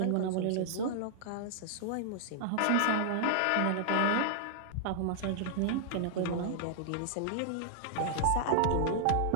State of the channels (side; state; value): both; different; correlation -0.01